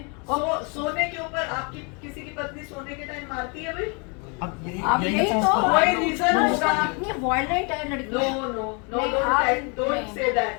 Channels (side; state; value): right; quieter; 33.6 dB